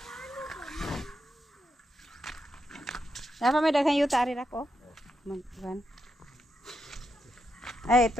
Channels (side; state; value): both; normal; correlation 0.83